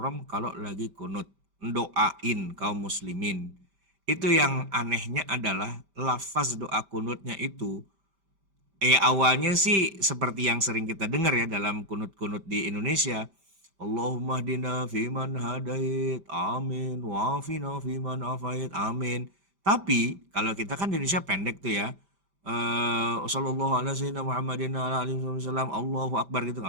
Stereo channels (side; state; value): left; late; 5.1 ms